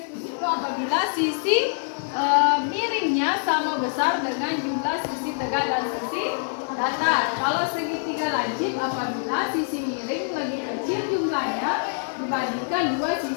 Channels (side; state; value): right; silent; digital silence